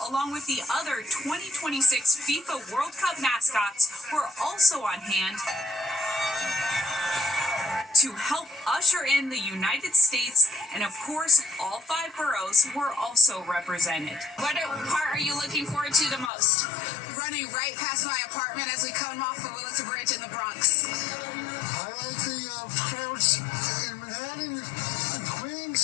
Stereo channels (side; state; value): right; drops out; at 16.3 s